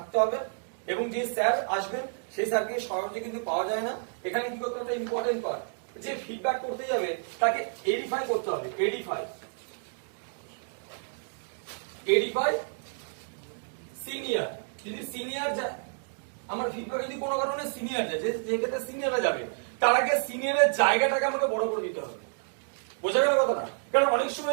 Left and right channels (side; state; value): left; silent; digital silence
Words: হবে। এবং যে স্যার আসবেন সেই স্যারকে সহজে কিন্তু পাওয়া যায় না। এখানে কি করতে হবে, ইম্পর্টেন্ট পার্ট, যে ফিডব্যাক করতে যাবে তাকে এডিফাই করতে হবে। এডিফাই সিনিয়র, যদি সিনিয়র যায়, আমার ফিডব্যাক যদি কোনো কারণে সিনিয়র যায়, যে ক্ষেত্রে সিনিয়ররা যাবে, তার আগে সিনিয়রের জায়গাটাকে আমাকে বড় করে দিতে হবে। বোঝা গেল কথাটা? কারণ অনেক